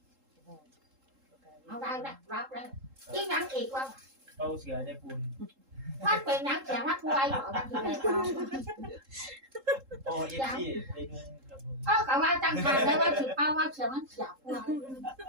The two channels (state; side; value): late; left; 3.7 ms